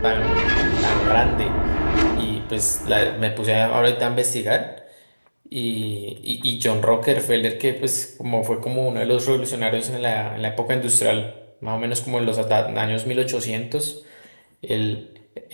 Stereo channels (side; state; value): both; inverted; correlation -1.00